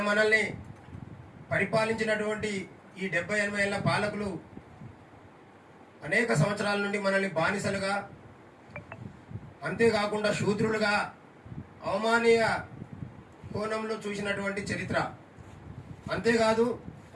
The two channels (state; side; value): identical; both; correlation 1.00